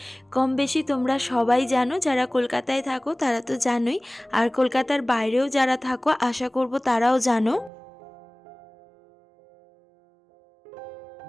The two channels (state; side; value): drops out; left; at 7.7 s